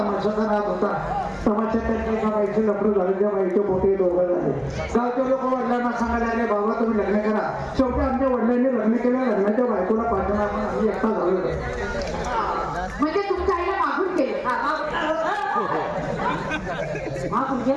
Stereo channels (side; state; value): both; identical; correlation 1.00